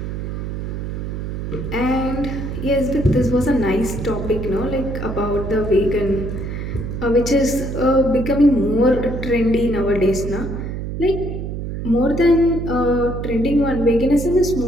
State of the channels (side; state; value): right; noise; hum, 5 dB below the sound